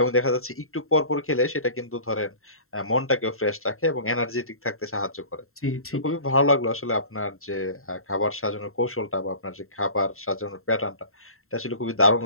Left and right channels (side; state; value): right; late; 0.62 ms